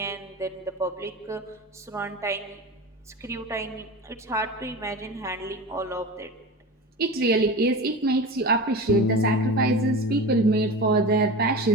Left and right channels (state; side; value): normal; both; correlation 0.30